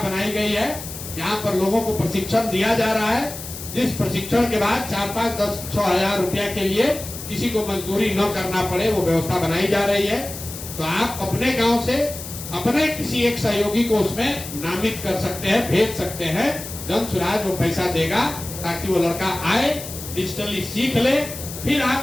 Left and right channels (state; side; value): noise; left; hiss, 11 dB below the sound